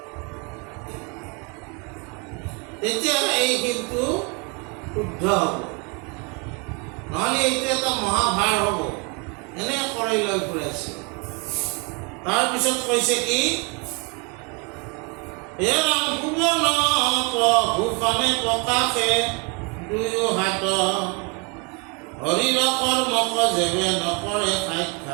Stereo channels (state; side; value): quieter; left; 32.3 dB